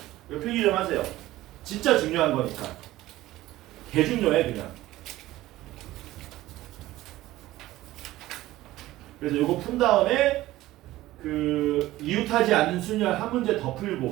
이거 필기 좀 하세요. 진짜 중요한 거니까. 개 중요해 그냥. 그래서 이거 푼 다음에 그 이웃하지 않는 순열 한 문제 더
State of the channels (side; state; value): left; quieter; 16.3 dB